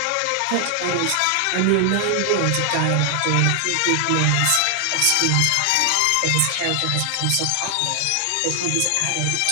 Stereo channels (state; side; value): different; both; correlation 0.00